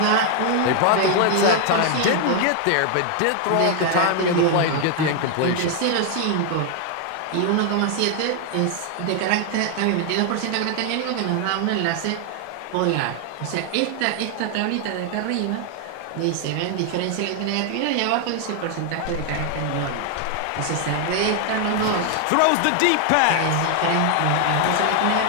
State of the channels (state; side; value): different; both; correlation 0.00